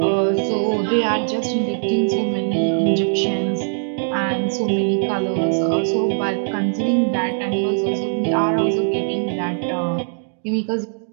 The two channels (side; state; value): left; silent; digital silence